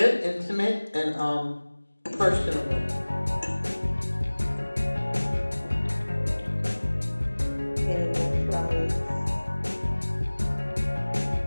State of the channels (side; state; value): both; inverted; correlation -1.00